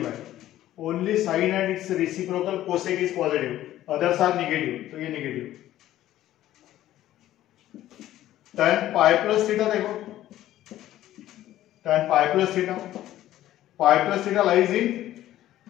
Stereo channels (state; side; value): quieter; right; 13.6 dB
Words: आहे, only sine and its reciprocal cosec is positive, others are negative. तो ये negative. tan pi plus theta देखो, tan pi plus theta, pi plus theta lies in,